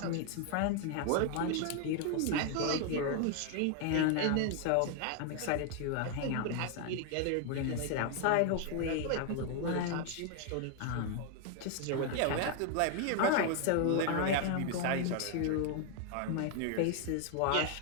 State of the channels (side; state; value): both; different; correlation 0.00